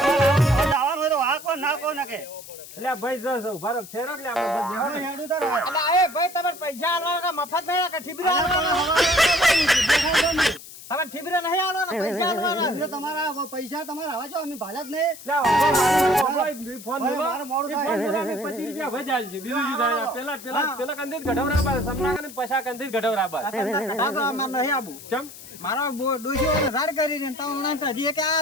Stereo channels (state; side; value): noise; left; hiss, 16 dB below the sound